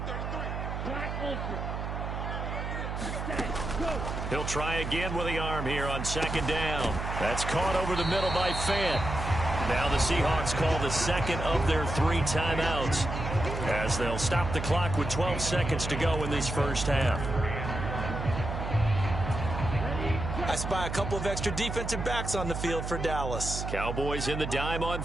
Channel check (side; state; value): right; noise; hum, 4 dB below the sound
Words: He'll try again with the arm here on 2nd down. That's caught over the middle by Fant. Now the Seahawks call the second of their 3 timeouts as they'll stop the clock with 12 seconds to go in this first half. I spy a couple of extra defensive backs on the field for Dallas. Cowboys in the dime on